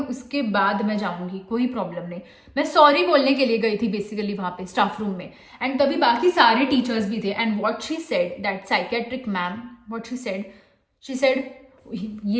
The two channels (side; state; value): both; identical; correlation 1.00